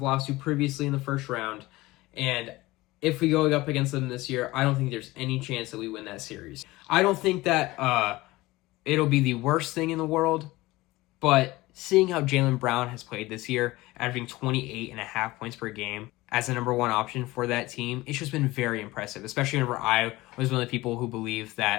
lost to previously in the first round. And if we go up against them this year, I don't think there's any chance that we win that series. I don't think that it'll be the worst thing in the world, but seeing how Jaylen Brown has played this year, averaging 28.5 points per game as the number one option for that team, it's just been very impressive, especially whenever I was one of the people who believed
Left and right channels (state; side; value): quieter; right; 19.6 dB